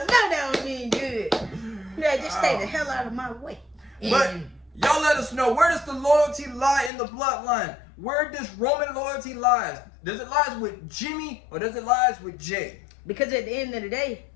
don't mean good. that, just stay the hell out of my way. But And y'all let us know, where does the loyalty lie in the bloodline? Where does Roman loyalty lies? Does it lies with Jimmy or does it lies with Jay? because at the end of the day,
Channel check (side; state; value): right; drops out; at 6.9 s